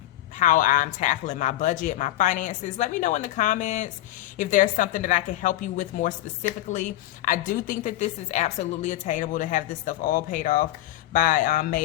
how I'm tackling my budget, my finances? Let me know in the comments if there's something that I can help you with more specifically. I do think that this is absolutely attainable to have this stuff all paid off by May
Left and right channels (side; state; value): right; quieter; 15.2 dB